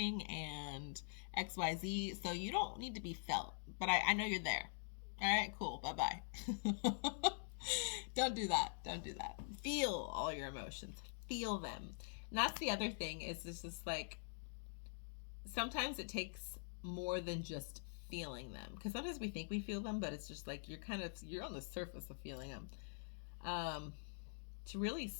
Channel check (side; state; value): right; silent; digital silence